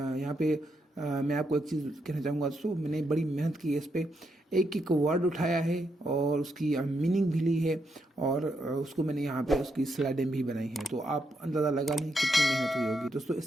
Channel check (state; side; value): normal; both; correlation 0.80